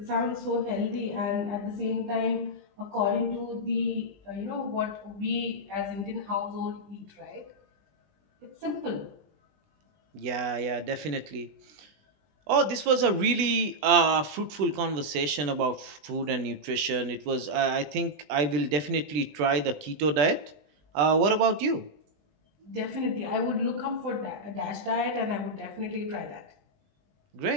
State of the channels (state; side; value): late; left; 20 ms